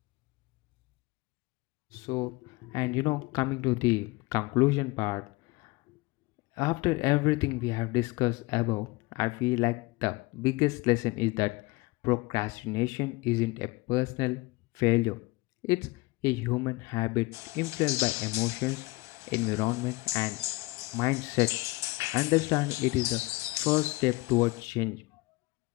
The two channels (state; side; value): quieter; right; 23.0 dB